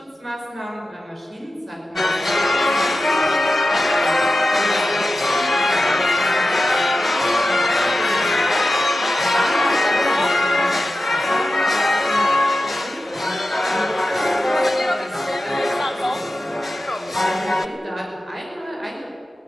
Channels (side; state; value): both; normal; correlation 0.93